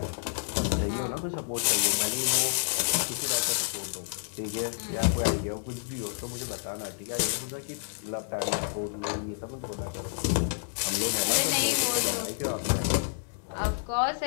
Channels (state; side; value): silent; right; digital silence